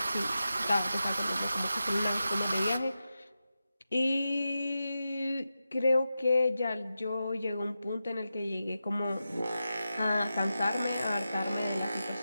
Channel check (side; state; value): both; inverted; correlation -0.91